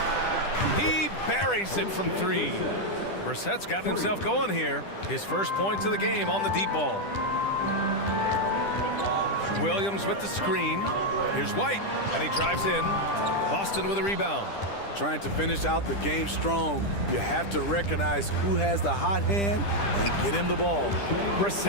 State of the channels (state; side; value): late; right; 10 ms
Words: He buries it from 3. Brissett's got himself going here. His first points of the game on the deep ball. Williams with the screen. Here's White, and he drives in. Boston with a rebound. Trying to finish out the game strong. You have to recognize who has the hot hand and get him the ball.